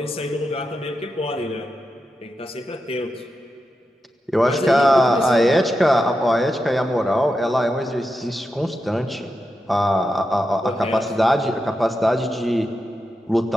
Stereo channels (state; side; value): normal; both; correlation 0.88